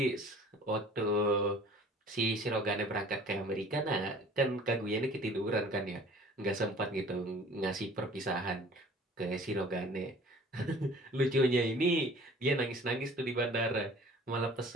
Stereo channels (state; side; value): normal; both; correlation 0.48